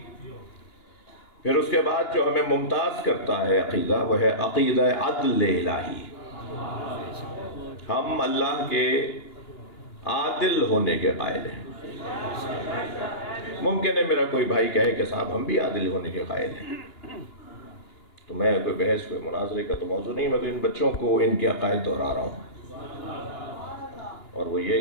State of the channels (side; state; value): right; late; 2.9 ms